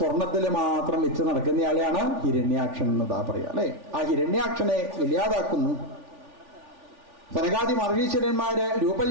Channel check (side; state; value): left; late; 3.4 ms